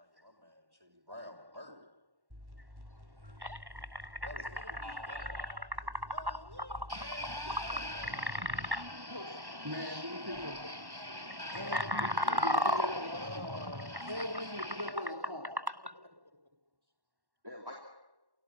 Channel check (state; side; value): late; left; 1.1 ms